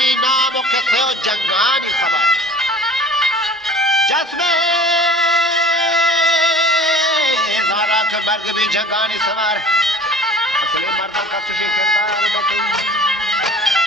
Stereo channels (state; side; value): normal; both; correlation 0.45